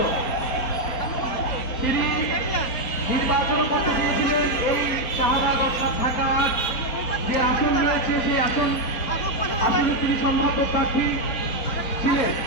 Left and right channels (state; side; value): late; right; 4.1 ms